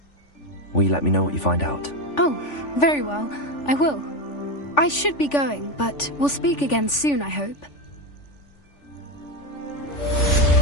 Will you let me know what you find out? Oh, very well. I will. I should be going, but we'll speak again soon, I hope.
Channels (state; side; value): late; right; 3.5 ms